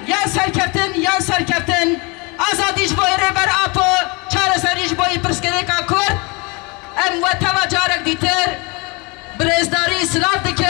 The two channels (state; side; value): quieter; right; 28.7 dB